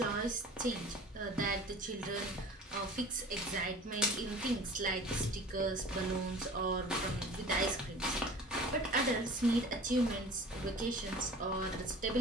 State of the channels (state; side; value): normal; both; correlation 0.42